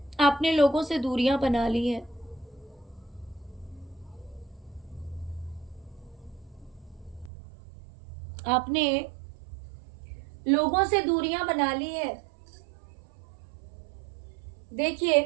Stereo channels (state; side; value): drops out; left; at 7.3 s